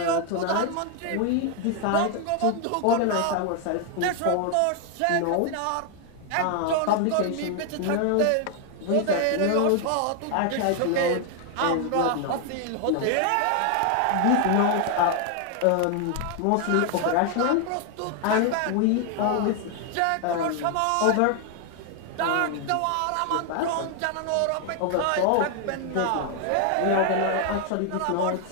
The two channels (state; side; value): different; both; correlation 0.00